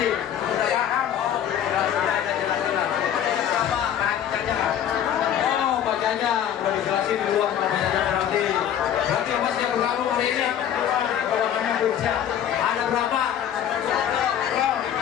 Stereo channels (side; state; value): right; quieter; 9.9 dB